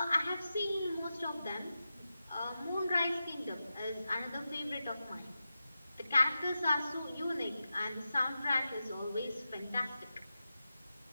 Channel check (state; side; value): inverted; both; correlation -0.91